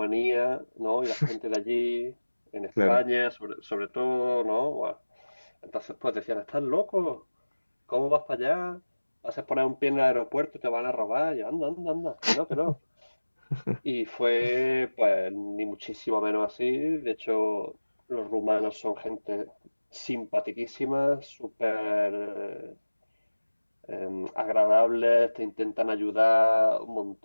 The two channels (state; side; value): inverted; both; correlation -1.00